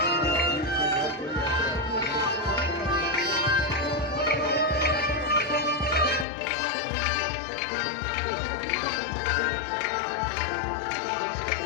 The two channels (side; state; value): right; drops out; at 6.2 s